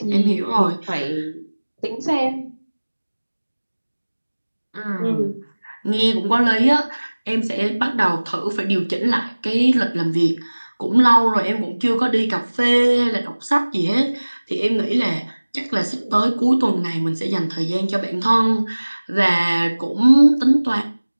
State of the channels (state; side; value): inverted; both; correlation -1.00